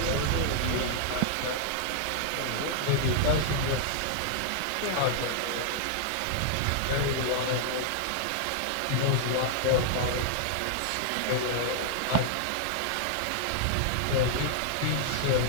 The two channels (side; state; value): both; different; correlation 0.00